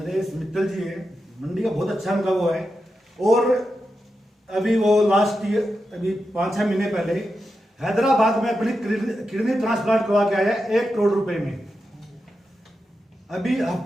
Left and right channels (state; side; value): normal; both; correlation 0.89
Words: मित्तल जी है, मंडी का बहुत अच्छा उनका वो है। और अभी वो लास्ट ईयर, अभी 5-6 महीने पहले हैदराबाद में अपनी किडनी ट्रांसप्लांट करवा के आया 1 करोड़ रुपए में। अभी